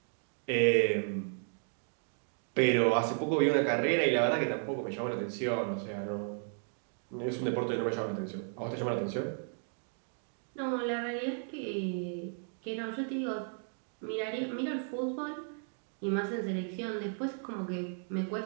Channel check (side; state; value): left; silent; 55 dB below the other